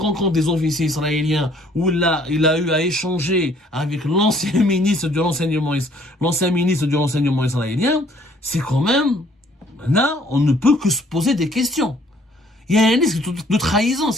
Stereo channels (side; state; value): both; normal; correlation 0.60